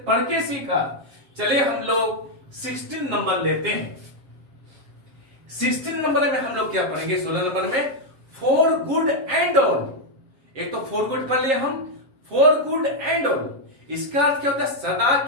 पढ़ के सीखा। चलिए हम लोग 16 नंबर लेते हैं। 16 नंबर में हम लोग क्या पढ़ेंगे? 16 नंबर में फॉर गुड एंड ऑल। एक तो फॉर गुड पढ़ लिया हम, फॉर गुड एंड ऑल इसका अर्थ क्या होता है? सदा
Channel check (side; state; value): left; late; 7.5 ms